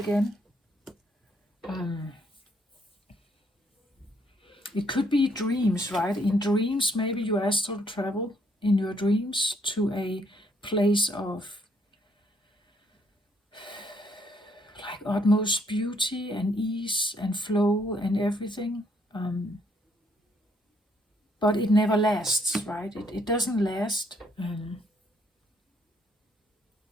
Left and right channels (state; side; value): normal; both; correlation 0.69